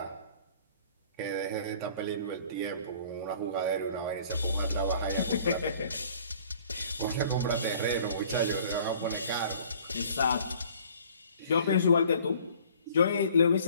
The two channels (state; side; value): inverted; both; correlation -0.53